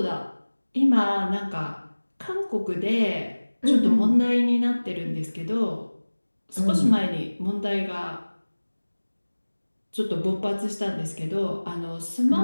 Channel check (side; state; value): both; inverted; correlation -1.00